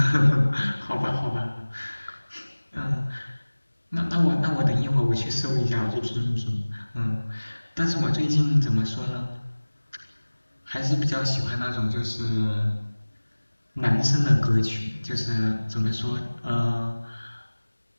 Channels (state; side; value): inverted; both; correlation -1.00